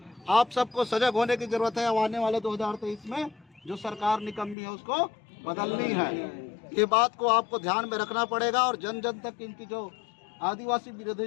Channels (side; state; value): right; drops out; at 4.5 s